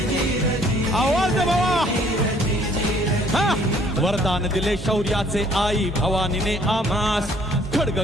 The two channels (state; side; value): normal; both; correlation 0.60